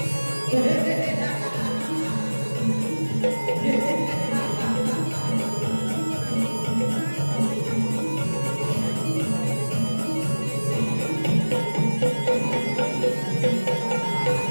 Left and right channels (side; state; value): both; inverted; correlation -1.00